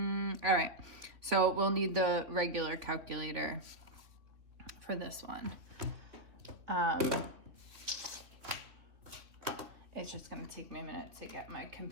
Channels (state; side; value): late; left; 3.2 ms